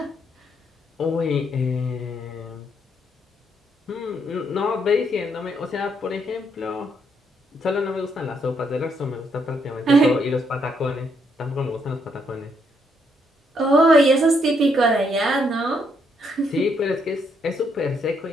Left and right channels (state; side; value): normal; both; correlation 0.74